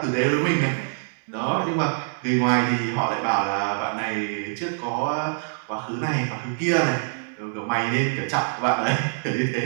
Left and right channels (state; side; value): silent; left; digital silence